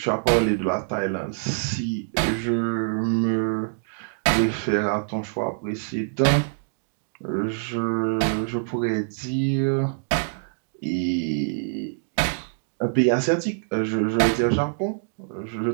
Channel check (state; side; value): silent; left; digital silence